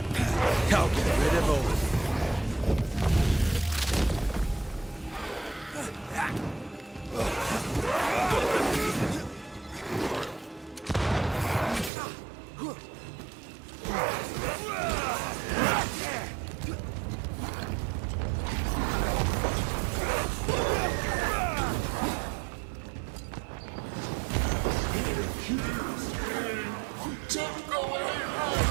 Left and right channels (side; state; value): left; drops out; at 11.9 s